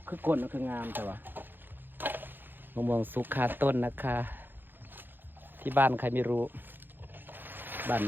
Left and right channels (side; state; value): left; late; 0.095 ms